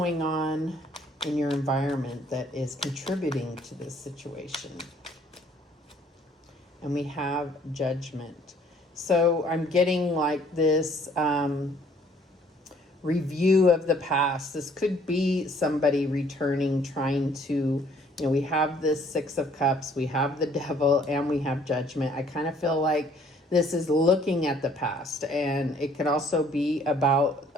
on in your environment that is contributing to this situation? And we have Judgment. So I'm getting like this review of the past. This could be somebody returning, trying to, we have this Six of Cups, we have the Devil, and we have Judgment. I kind of feel like this is looking at the past, and it could also be about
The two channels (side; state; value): both; normal; correlation 0.60